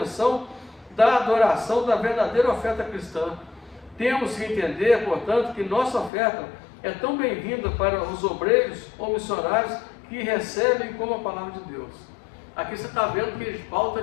da adoração da verdadeira oferta cristã. Temos que entender, portanto, que nossa oferta é tão bem-vinda para os obreiros ou missionários que recebem como a palavra de Deus. Aqui você está vendo que Paulo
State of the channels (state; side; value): drops out; right; at 6.1 s